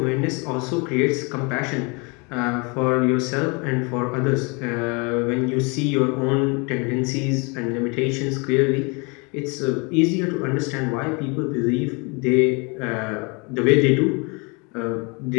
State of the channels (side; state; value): right; quieter; 30.5 dB